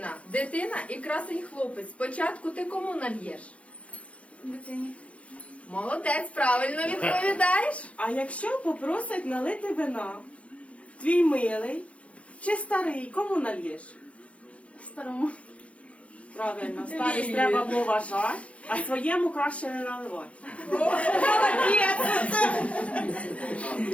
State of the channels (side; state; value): right; late; 0.063 ms